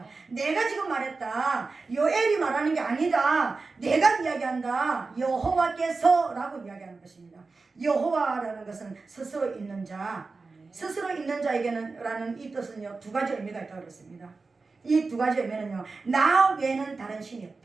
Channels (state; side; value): quieter; left; 4.0 dB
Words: 내가 지금 말했다. 요엘이 말하는 게 아니다. 내가 이야기한다. 여호와께서 라고 이야기하는 것입니다. 여호와라는 것은 스스로 있는 자, 스스로 있는 자에게는 라는 이 뜻은요, 두 가지 의미가 있다고 그랬습니다. 이 두 가지 의미는요, 나 외에는 다른 신이